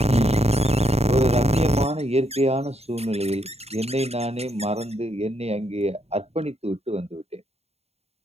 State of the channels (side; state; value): left; late; 0.30 ms